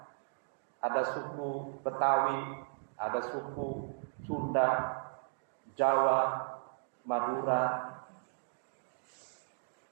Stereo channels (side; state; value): left; silent; digital silence